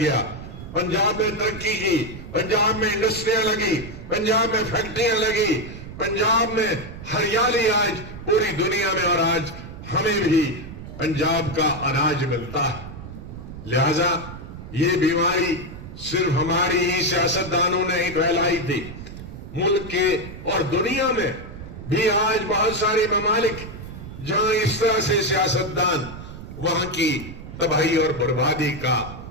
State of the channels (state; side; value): noise; right; rumble, 12 dB below the sound